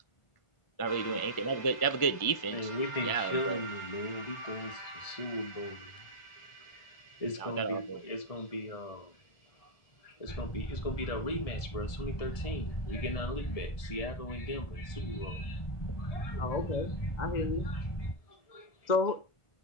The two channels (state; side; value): late; right; 1.4 ms